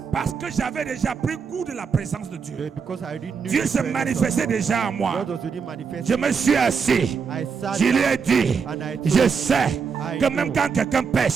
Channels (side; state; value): left; quieter; 5.9 dB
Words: parce que j'avais déjà pris goût de la présence de Dieu, because I already knew Dieu the se presence of manifestait God, déjà en moi. God was already manifesting. Je me suis assis. I sat Je lui down ai dit, and I je told sais I que même know quand quelqu'un